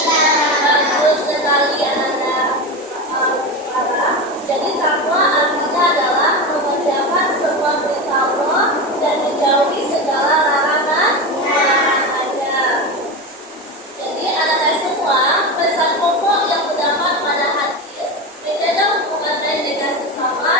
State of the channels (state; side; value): normal; both; correlation 0.20